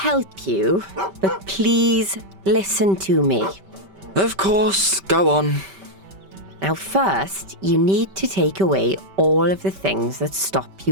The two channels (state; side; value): late; left; 5.2 ms